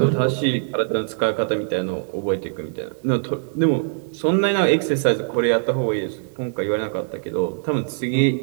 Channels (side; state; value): left; silent; digital silence